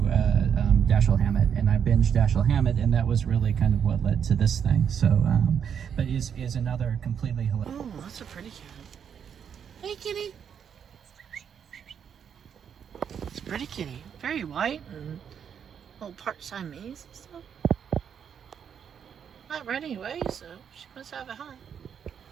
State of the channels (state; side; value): quieter; left; 7.8 dB